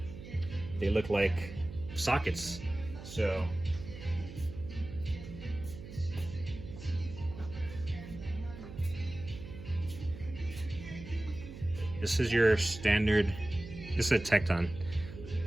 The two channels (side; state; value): right; noise; hum, 13 dB below the sound